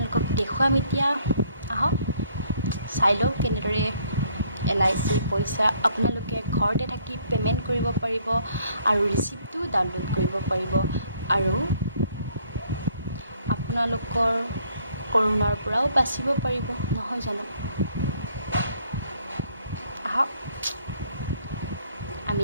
দেখুৱাম এতিয়া। আহক চাই লওক কেনেদৰে LIC পইচা আপোনালোকে ঘৰতে থাকি পে'মেণ্ট কৰিব পাৰিব, আৰু ৰিচিপ্টটো ডাউনলোড কৰিব পাৰিব, আৰু আপোনালোকৰ কৰোণাৰ পৰাও বাচিব পাৰিব, নহয় জানো। আহক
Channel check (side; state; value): both; inverted; correlation -0.64